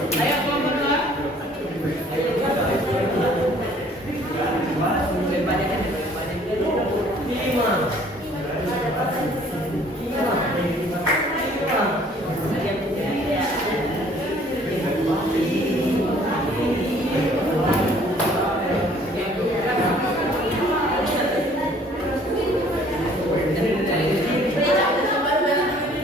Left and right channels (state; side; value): normal; both; correlation 0.56